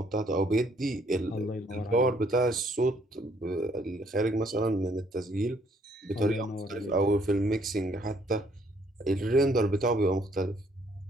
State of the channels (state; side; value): normal; both; correlation 0.66